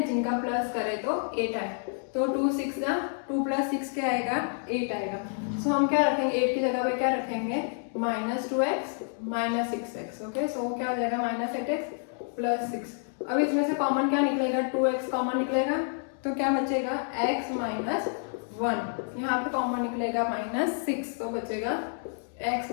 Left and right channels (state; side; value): silent; right; 59 dB below the other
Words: जिनका प्लस करे तो 8 आए। तो 2 6 जा 2 प्लस 6 क्या आएगा? 8 आएगा। सो हम क्या रखेंगे? 8 की जगह पे क्या रखेंगे? Minus 2x minus 6x। Okay, सो क्या हो जाएगा? Minus 8x plus 6। अब इसमें से कॉमन क्या निकलेगा? 2x कॉमन निकलेगा, तो क्या बचेगा? x minus 1। यहाँ पे कॉमन निकलेगा माइनस 6, तो बचेगा x